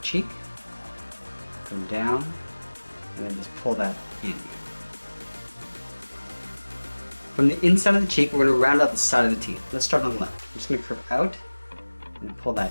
cheek, come down, and then just pull that in. From the inside of the cheek, we're going to round out the side of the teeth. Let's start on the left. I'm just going to curve out and pull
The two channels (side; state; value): both; inverted; correlation -1.00